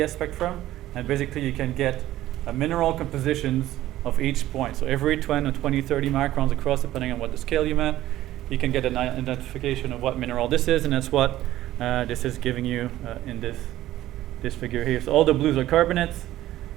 spectrum. And basically you can get mineral compositions of each point. So every 20 or 20, 30 microns across, depending on what the scale you meant, you can get an identification of what mineral this is, and that's what this is giving you in this figure here. So all the blues are carbonates,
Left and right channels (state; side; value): quieter; left; 14.5 dB